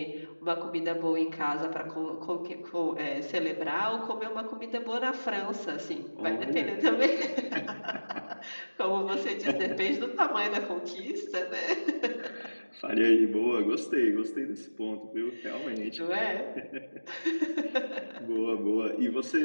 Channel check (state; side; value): inverted; both; correlation -1.00